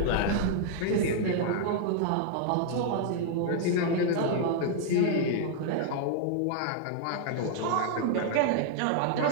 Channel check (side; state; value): both; different; correlation -0.01